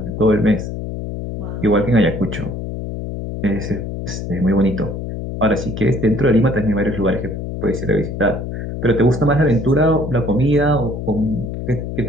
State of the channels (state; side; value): noise; left; hum, 6 dB below the sound